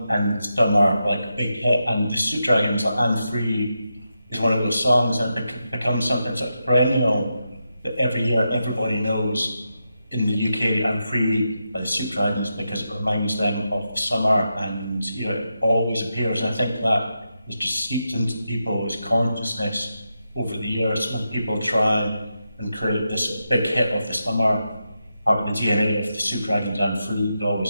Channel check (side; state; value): both; inverted; correlation -0.87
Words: and summer like big hit, and the Soup Dragons like I'm Free is one of those songs, and it becomes something sort of perennial that every year everybody knows in the UK I'm Free by the Soup Dragons, because it reminds them of the summer, and it always appears. And I think that is just seeped into people's consciousness over the years when people try and create this big hit of the summer. Part of the DNA of the Soup Dragons I'm Free is always